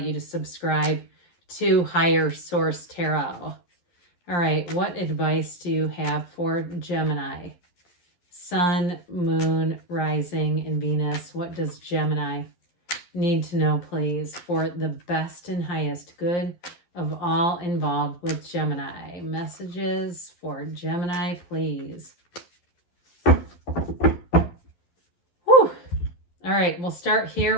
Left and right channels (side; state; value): right; late; 11 ms